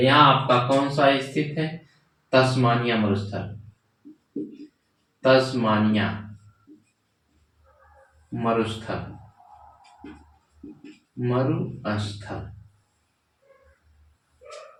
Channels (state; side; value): identical; both; correlation 1.00